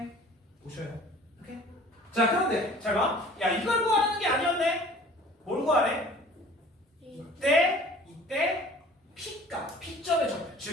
보셔요. 오케이? 자, 그런데 잘 봐. 야, 이걸 구하는 게 아니었네. 뭘 구하래? 이때 P값, P점의 좌표,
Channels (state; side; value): normal; both; correlation 0.48